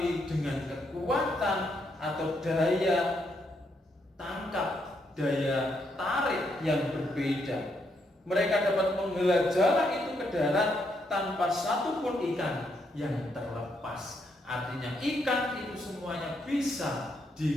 dengan kekuatan atau daya tangkap, daya tarik yang berbeda. Mereka dapat menghela jala itu ke darat tanpa satu pun ikan yang terlepas. Artinya ikan itu semuanya bisa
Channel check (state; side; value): normal; both; correlation 0.77